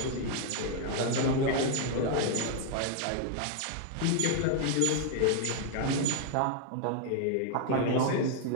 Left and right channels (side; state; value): both; different; correlation 0.00